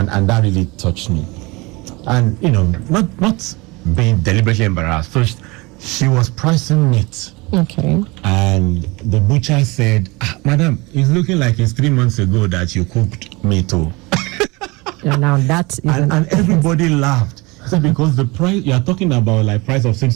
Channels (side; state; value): left; quieter; 24.7 dB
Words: that really touched me. And, not being deliberately embarrassed. So she was pricing meat. Okay. And the butcher said, madam, it's looking like it's 3 months ago that you cooked meat. Yeah, now that is and everybody laughed. So because the price, you are talking about price of